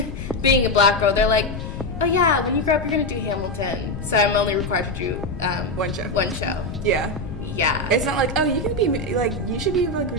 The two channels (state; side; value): noise; left; rumble, 8 dB below the sound